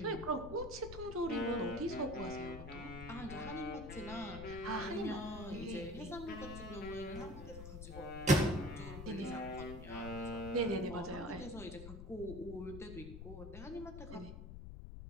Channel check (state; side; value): noise; left; rumble, 9 dB below the sound